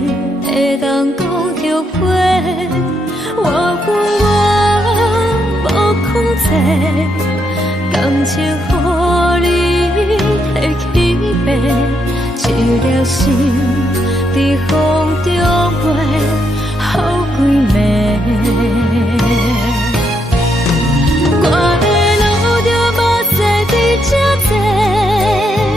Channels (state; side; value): normal; both; correlation 0.78